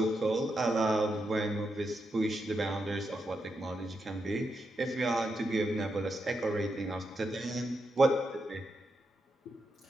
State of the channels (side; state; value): both; normal; correlation 0.84